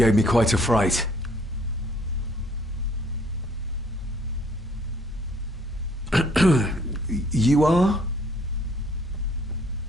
me quite a fright. You are?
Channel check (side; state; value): both; normal; correlation 0.61